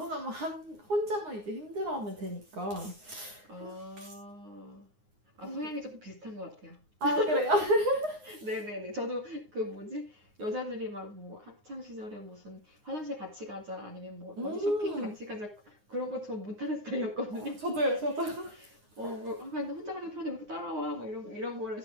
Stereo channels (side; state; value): left; late; 9.6 ms